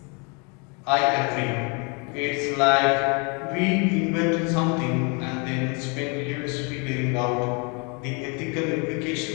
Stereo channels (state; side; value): quieter; right; 33.2 dB